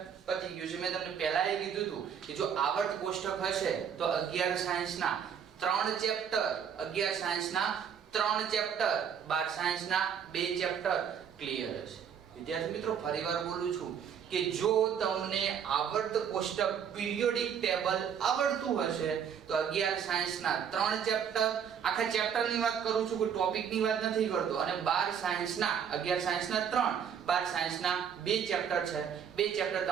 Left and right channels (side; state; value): left; quieter; 7.9 dB